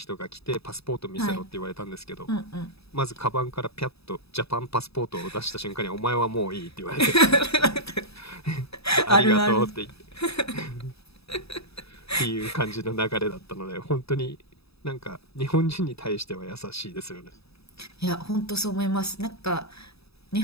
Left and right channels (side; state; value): right; late; 0.78 ms